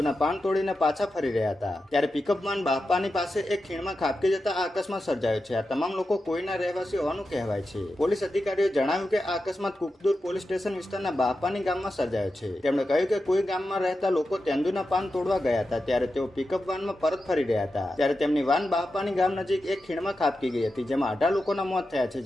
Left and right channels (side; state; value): both; normal; correlation 0.90